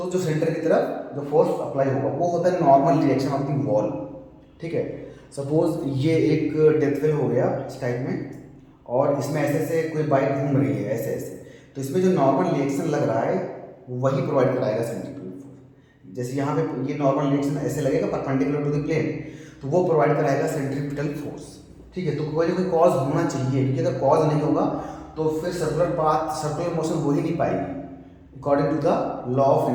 जो सेंटर की तरफ जो फोर्स अप्लाई होगा वो होता है normal reaction of the wall, ठीक है। सपोज ये एक डेथ फेल हो गया इस टाइप में, और इसमें ऐसे ऐसे कोई बाइक घूम रही है ऐसे ऐसे, तो इसमें जो नॉर्मल रिएक्शन लग रहा है वही प्रोवाइड कराएगा सेंट्रीफ्यूगल फोर्स। जैसे यहाँ पे ये नॉर्मल रिएक्शन ऐसे लगेगा परपेंडिकुलर टू द प्लेन, तो वो प्रोवाइड कराएगा सेंट्रीपिटल फोर्स। ठीक है, तो कोई ना कोई कॉज होना चाहिए, क्योंकि अगर कॉज नहीं होगा तो फिर सर्कुलर पाथ सर्कुलर मोशन हो ही नहीं पाएगी according to the law of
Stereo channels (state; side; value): identical; both; correlation 1.00